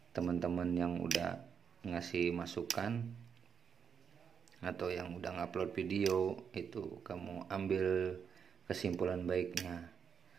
teman-teman yang udah ngasih masukan atau yang udah ngupload video, itu kamu ambil kesimpulan baiknya.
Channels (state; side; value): quieter; left; 6.9 dB